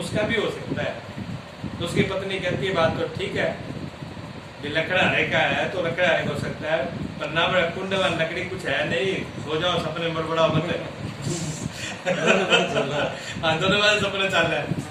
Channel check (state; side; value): identical; both; correlation 1.00